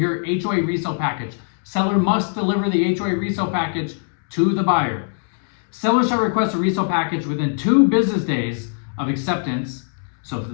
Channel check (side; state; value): right; silent; digital silence